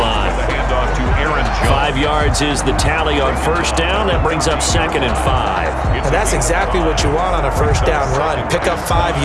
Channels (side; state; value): both; identical; correlation 1.00